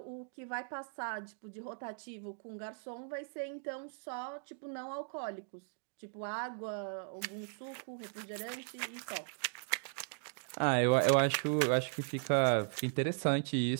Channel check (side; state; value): left; silent; digital silence